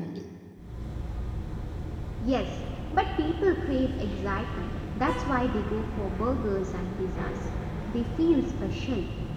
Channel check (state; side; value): identical; both; correlation 1.00